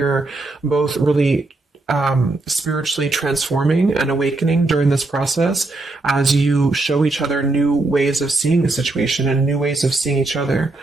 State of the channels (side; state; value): left; quieter; 3.1 dB